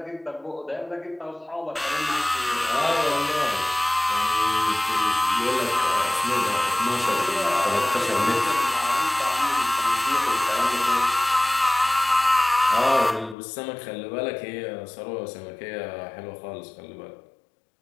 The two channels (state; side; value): drops out; right; at 13.4 s